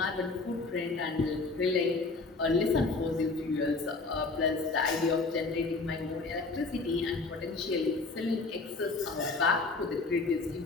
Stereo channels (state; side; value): quieter; right; 3.7 dB